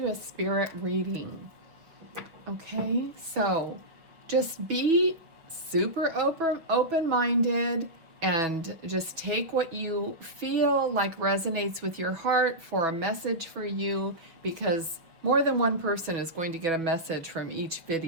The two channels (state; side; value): late; left; 6.1 ms